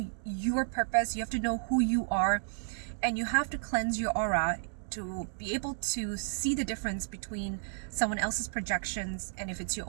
your purpose. You have to know who you are, and you have to cleanse your aura to be able to see the difference between someone else's projections and if it's your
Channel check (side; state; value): left; silent; 56 dB below the other